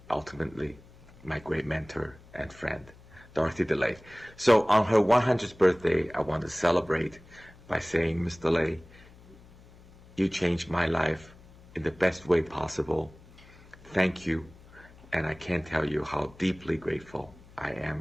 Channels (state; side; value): noise; left; hum, 23 dB below the sound